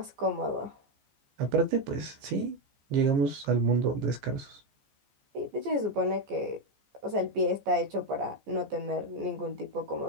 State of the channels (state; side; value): late; left; 14 ms